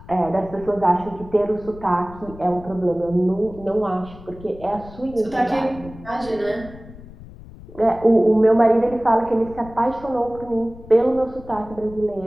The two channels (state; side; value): noise; left; rumble, 18 dB below the sound